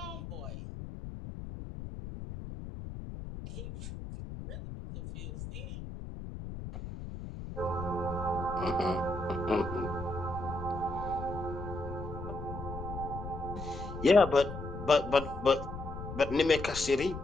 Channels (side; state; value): left; noise; rumble, 9 dB below the sound